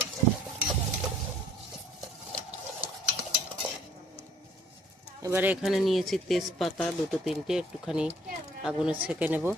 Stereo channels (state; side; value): normal; both; correlation 0.59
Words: এবারে এখানে নিয়েছি তেজপাতা দুটো তিনটে, একটুখানি আগুনে ছেঁকে নেব।